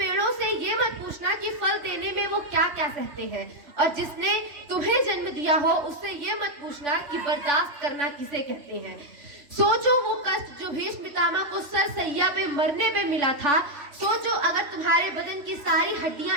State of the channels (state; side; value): late; left; 3.5 ms